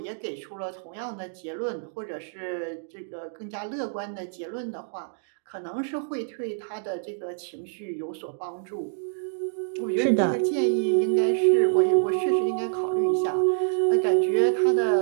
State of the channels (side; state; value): left; silent; digital silence